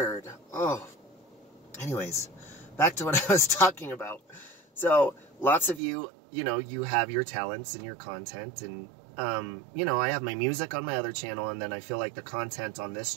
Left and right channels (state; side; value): drops out; left; at 5.8 s